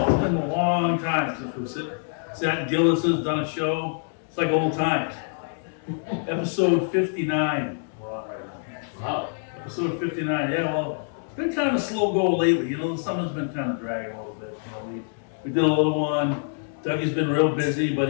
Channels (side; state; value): right; silent; digital silence